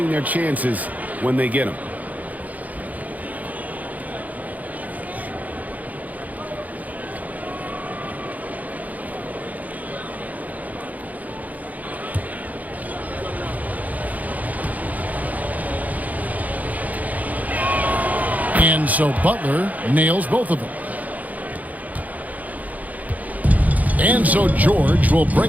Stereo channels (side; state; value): left; late; 0.077 ms